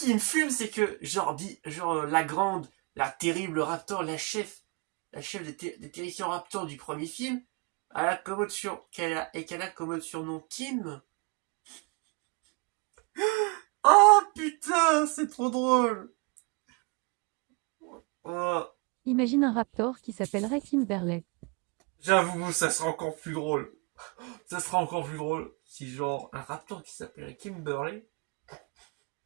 me fume, c'est que genre la grande, la terrible raptor, la chef des terrifiants raptors du premier film, qu'elle a comme surnom Kim. Oh putain, c'est trop drôle. Oh. Imagine un raptor qui s'appellerait Kimberley. J'avoue, ça sera encore plus drôle. Ça sera encore plus drôle si genre un raptor qui s'appellerait Kimberley.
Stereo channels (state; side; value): quieter; left; 30.0 dB